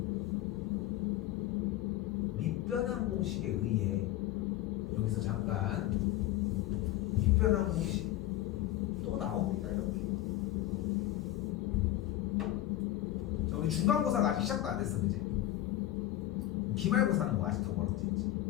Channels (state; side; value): quieter; right; 14.4 dB